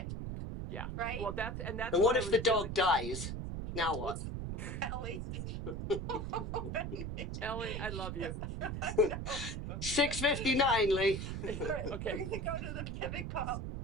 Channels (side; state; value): right; noise; rumble, 4 dB below the sound